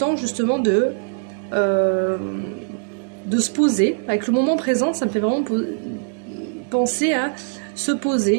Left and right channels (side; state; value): left; silent; 60 dB below the other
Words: justement de se poser. Avec le moment présent, ça me fait vraiment penser à se